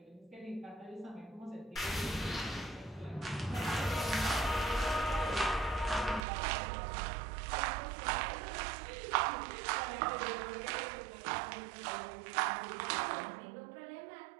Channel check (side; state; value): left; drops out; at 6.2 s